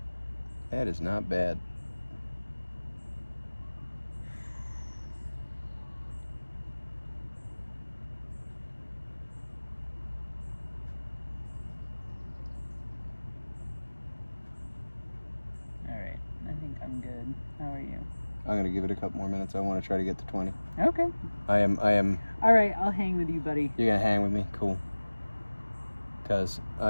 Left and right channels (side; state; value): both; inverted; correlation -1.00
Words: That is not bad. Alright, I think I'm good. How are you? I'm going to give it a couple more minutes. I want to try to get to 20. Okay. I am. Alright, I'll hang with you, buddy. You're going to hang with me? Cool. Because